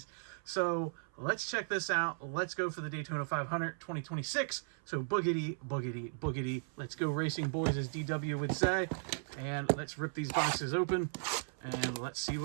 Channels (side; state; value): left; silent; 54 dB below the other